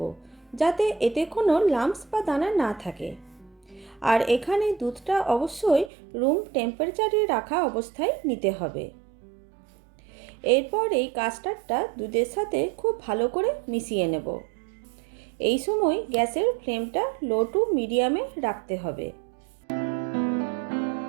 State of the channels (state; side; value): drops out; left; at 5.9 s